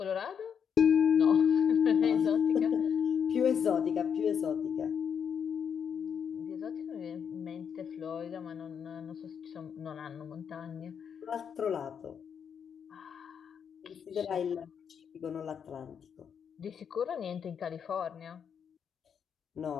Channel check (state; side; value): quieter; right; 7.4 dB